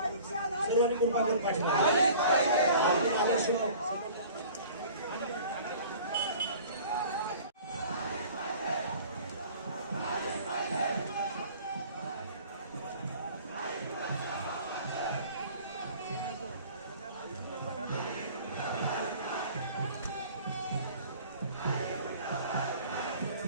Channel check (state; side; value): inverted; both; correlation -0.47